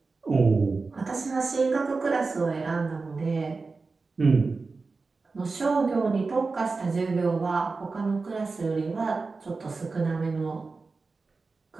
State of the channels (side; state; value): left; quieter; 4.1 dB